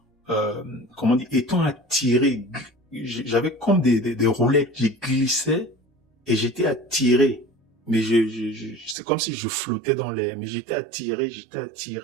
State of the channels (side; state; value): left; drops out; at 9.0 s